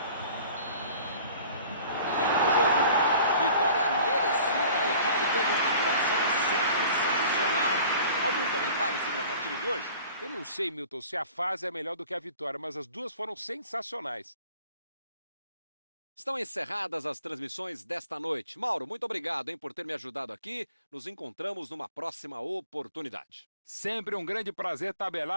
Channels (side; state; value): both; inverted; correlation -0.47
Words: Fim do jogo. Vitória merecida. A equipe teve uma atuação sensacional. Algum comentário sobre a partida de hoje? Eu não sei, Milton, se a fase é melhor do que a vitória, mas as duas foram sensacionais. Estão encerradas as transmissões desta noite. Mauro, muito obrigado, hein, por ter me ajudado aqui. Nos encontramos numa próxima oportunidade. Sempre um grande prazer